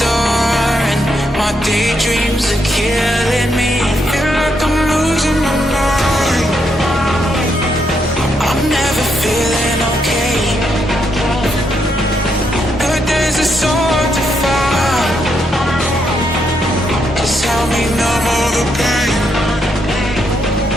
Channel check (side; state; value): both; normal; correlation 0.78